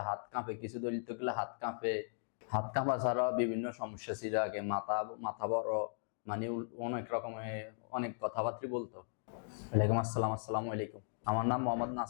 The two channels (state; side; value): silent; right; digital silence